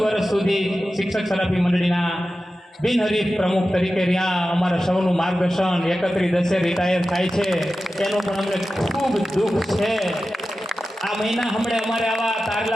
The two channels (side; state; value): both; normal; correlation 0.94